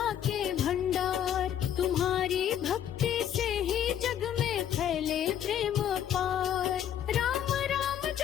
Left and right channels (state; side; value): quieter; right; 10.0 dB